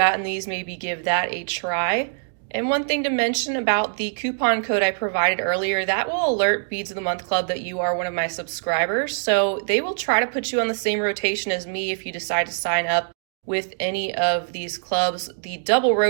these, maybe give that a try. And one thing to mention about the coupon code I provided earlier, that will alert Beads of the Month Club that you are one of my subscribers. So they will try to put you on the same rotation as me if you decide to sign up with any of these clubs. The double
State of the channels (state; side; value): silent; left; digital silence